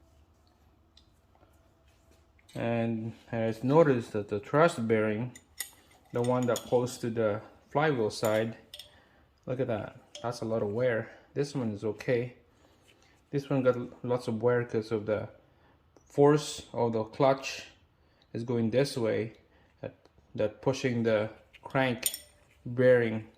And I just noticed that the thrust bearing, the one that goes to the flywheel side, look at that. That's a lot of wear. This one is okay. This one got lots of wear because of the force of the clutch is going this way, that pushing the crank bearing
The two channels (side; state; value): both; identical; correlation 1.00